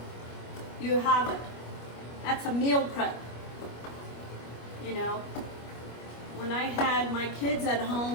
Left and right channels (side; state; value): right; late; 25 ms